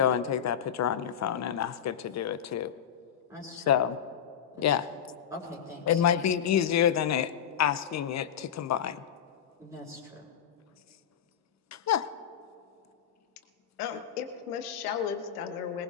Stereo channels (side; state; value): right; quieter; 8.9 dB